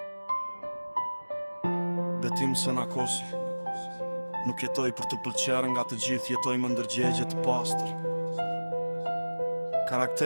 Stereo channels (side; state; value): both; inverted; correlation -1.00